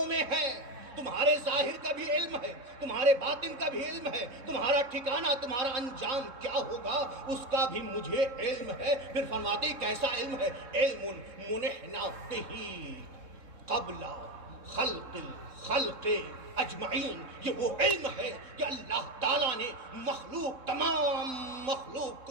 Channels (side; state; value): left; late; 3.7 ms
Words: میں ہے. تمہارے ظاہر کا بھی علم ہے، تمہارے باطن کا بھی علم ہے، تمہارا ٹھکانہ، تمہارا انجام کیا ہوگا اس کا بھی مجھے علم ہے. پھر فرماتے ہیں کیسا علم ہے؟ علم منحنا بہ قبل خلق الخلق اجمعین. یہ وہ علم ہے کہ اللہ تعالیٰ نے مخلوق، تمام مخلوق